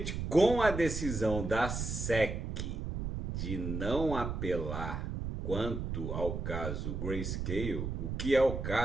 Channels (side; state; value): right; noise; rumble, 4 dB below the sound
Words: com a decisão da SEC de não apelar quanto ao caso Grayscale, o que é o